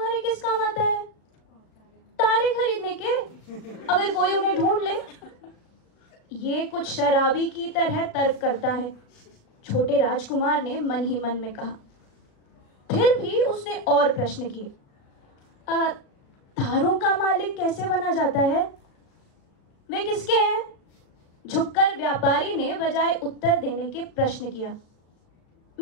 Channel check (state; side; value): late; right; 36 ms